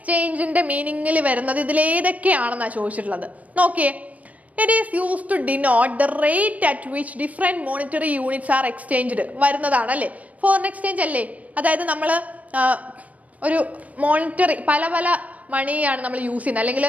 മീനിങ്ങിൽ വരുന്നത് ഇതിലേതൊക്കെയാണെന്നാണ് ചോദിച്ചിട്ടുള്ളത്. നോക്കിയേ, it is used to denote the rate at which different monetary units are exchanged വരുന്നതാണ് അല്ലേ foreign exchange അല്ലേ. അതായത് നമ്മൾ ഒരു മോണിറ്ററി പല മണിയാണ് നമ്മൾ യൂസ് ചെയ്യുന്നത്, അല്ലെങ്കിൽ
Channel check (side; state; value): left; late; 0.069 ms